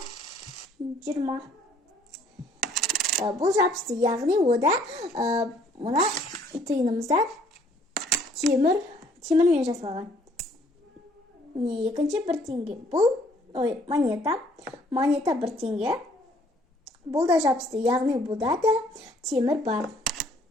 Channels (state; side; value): normal; both; correlation 0.61